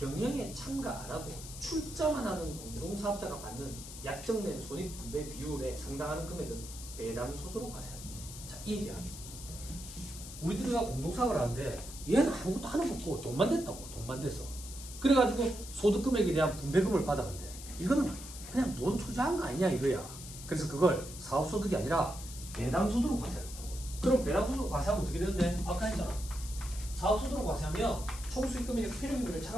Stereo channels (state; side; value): noise; left; hiss, 12 dB below the sound